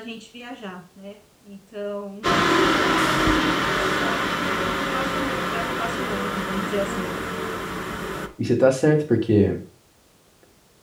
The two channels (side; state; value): both; identical; correlation 1.00